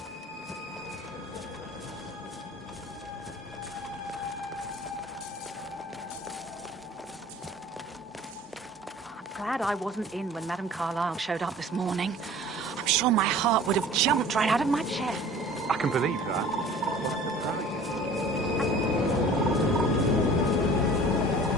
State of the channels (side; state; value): both; normal; correlation 0.46